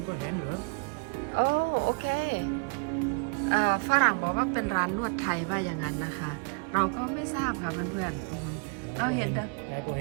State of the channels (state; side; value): quieter; left; 35.7 dB